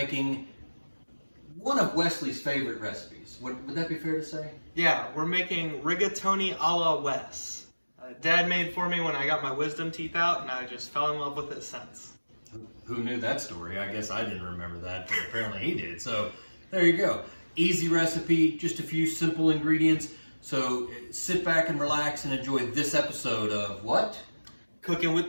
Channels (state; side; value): inverted; both; correlation -1.00